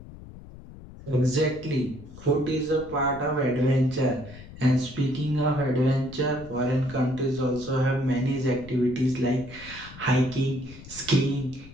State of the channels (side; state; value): left; noise; rumble, 17 dB below the sound